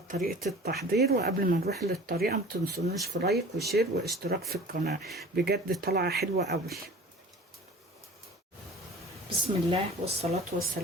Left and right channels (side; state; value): both; normal; correlation 0.42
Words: طريقة التحضير. وقبل ما نروح للطريقة ما تنسونوش في لايك وشير واشتراك في القناة، بجد طالعة حلوة قوي. بسم الله والصلاة